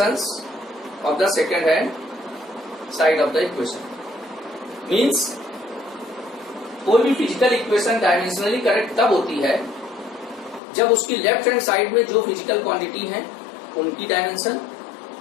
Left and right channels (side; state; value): right; drops out; at 10.6 s